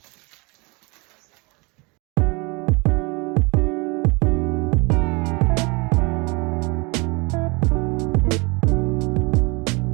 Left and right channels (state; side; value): quieter; left; 28.0 dB